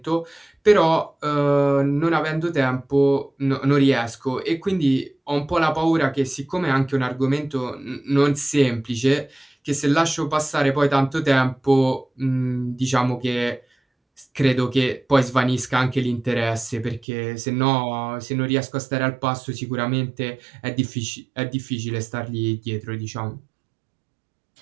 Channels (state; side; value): drops out; left; at 17.1 s